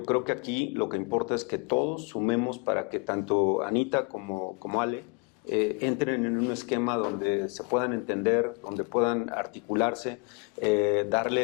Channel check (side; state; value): right; quieter; 33.3 dB